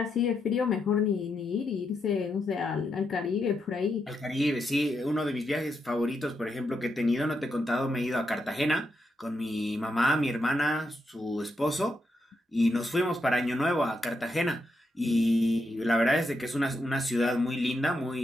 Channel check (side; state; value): both; normal; correlation 0.82